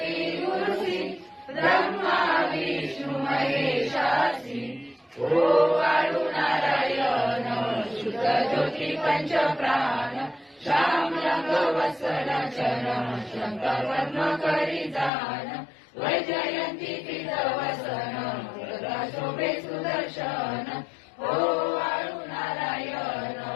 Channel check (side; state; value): right; drops out; at 15.1 s